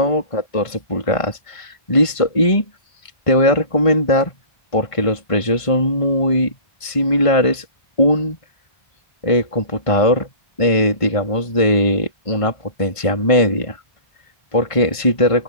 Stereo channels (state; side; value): late; right; 1.5 ms